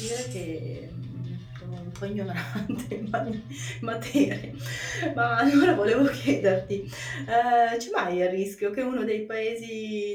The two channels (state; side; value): identical; both; correlation 1.00